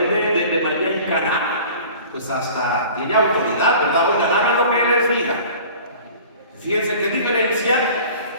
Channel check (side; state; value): both; inverted; correlation -0.43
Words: de María en Caná, pues hasta tiene autoridad, ¿verdad? Oigan, hagan lo que Él les diga. Fíjense qué diferencia.